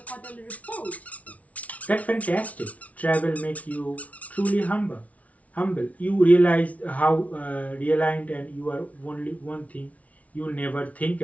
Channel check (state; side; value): late; right; 0.068 ms